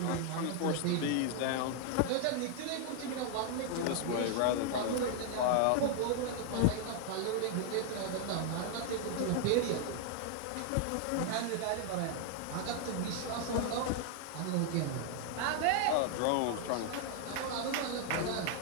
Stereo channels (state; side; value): different; both; correlation 0.00